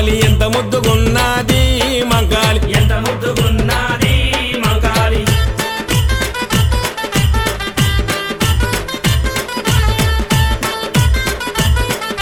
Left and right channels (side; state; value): both; identical; correlation 1.00